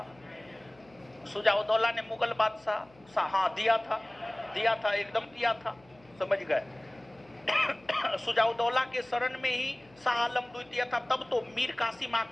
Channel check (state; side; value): noise; left; hum, 29 dB below the sound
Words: सुजाउद्दौला ने मुगल बादशाह, हाँ दिया था, एकदम दिया था, समझ गए? सुजाउद्दौला के शरण में ही शाह आलम द्वितीय था, तब तो मीर कासिम